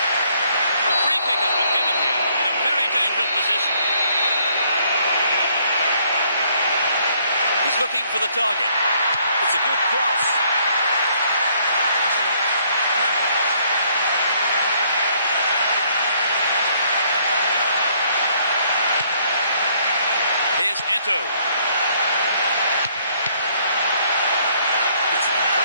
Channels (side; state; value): both; inverted; correlation -0.66